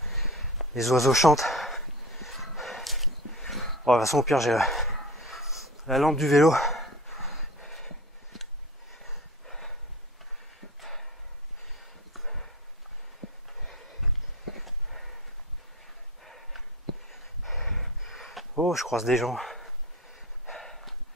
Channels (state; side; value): normal; both; correlation 0.33